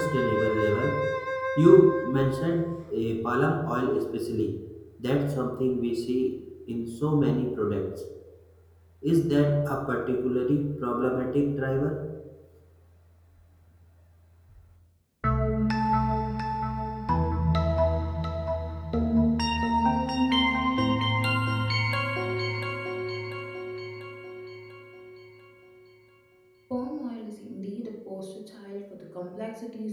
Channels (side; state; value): both; identical; correlation 1.00